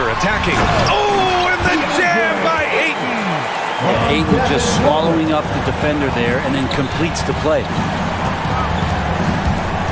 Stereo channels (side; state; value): both; identical; correlation 1.00